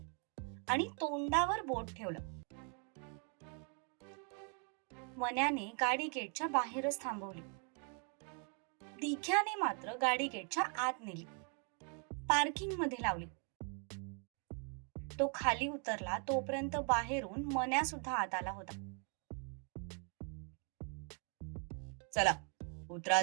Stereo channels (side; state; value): left; quieter; 39.4 dB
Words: आणि तोंडावर बोट ठेवलं. मन्याने गाडी गेटच्या बाहेरच थांबवली. दिघ्याने मात्र गाडी गेटच्या आत नेली, पार्किंग मध्ये लावली. तो खाली उतरला तोपर्यंत बाहेरून मन्या सुद्धा आत आला होता. चला उतरा